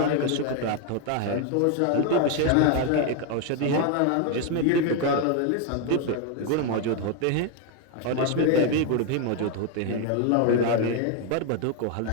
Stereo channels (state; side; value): different; both; correlation 0.01